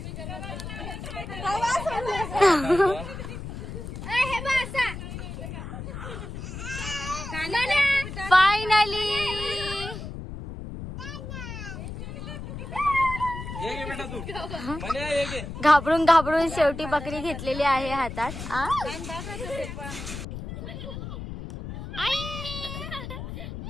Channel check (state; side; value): noise; left; rumble, 8 dB below the sound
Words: हे बघ असा. फायनली ये घे बेटा तू. म्हणे ये घे. घाबरून घाबरून शेवटी बकरी घेतलेली आहे हातात.